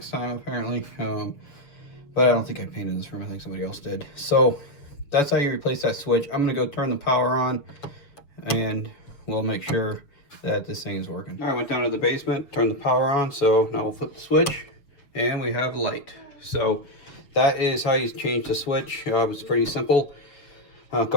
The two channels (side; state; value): right; late; 7.0 ms